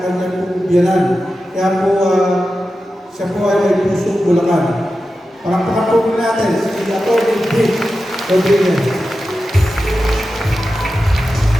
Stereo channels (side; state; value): both; normal; correlation 0.92